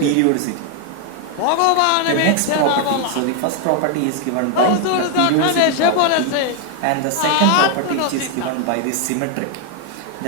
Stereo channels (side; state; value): both; different; correlation 0.00